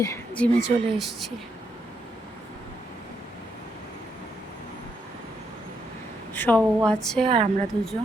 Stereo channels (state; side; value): normal; both; correlation 0.78